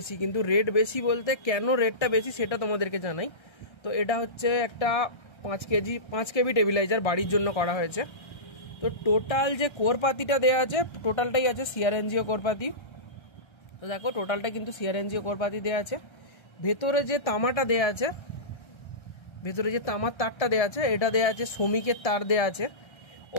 কিন্তু রেট বেশি বলতে কেন রেটটা বেশি সেটা তোমাদেরকে জানাই। তো এটা হচ্ছে একটা 5 কেবি টেবিলাইজার বাড়ির জন্য করা হয়েছে। তো টোটাল যে কোরপাতিটা দেওয়া আছে টোটালটাই আছে সিআরএনজিও কোরপাতি। তো দেখো টোটালটা কিন্তু সিআরএনজিও কোরপাতি দেওয়া আছে। ভেতরে যে তামাটা দেওয়া আছে, ভেতরে যে তামার তারটা দেওয়া আছে এটা দেওয়া আছে শ্রমিকের তার দেওয়া আছে।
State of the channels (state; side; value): late; right; 1.3 ms